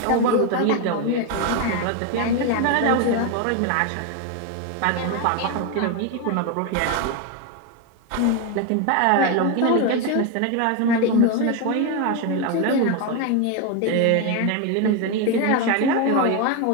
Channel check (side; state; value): both; different; correlation 0.02